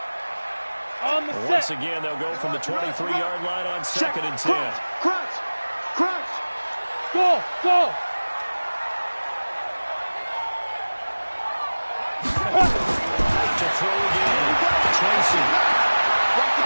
On the Once set. again, they'll go from the 23-yard line on second and 10. Crunch. Crunch. Go, go. To throw again, Tracy.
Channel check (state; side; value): inverted; both; correlation -1.00